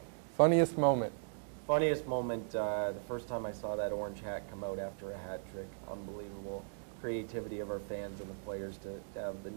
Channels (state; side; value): silent; left; digital silence